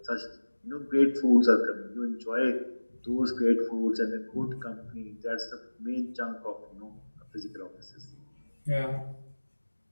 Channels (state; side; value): inverted; both; correlation -1.00